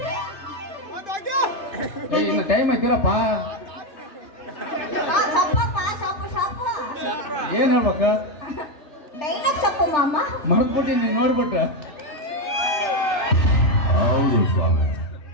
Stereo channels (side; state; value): right; late; 3.3 ms